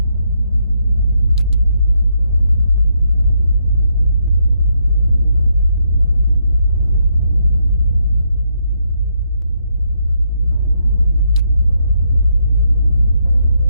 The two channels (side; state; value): both; inverted; correlation -0.76